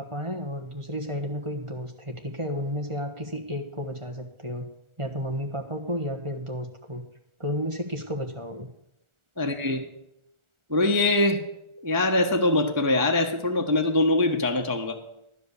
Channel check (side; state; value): left; late; 1.4 ms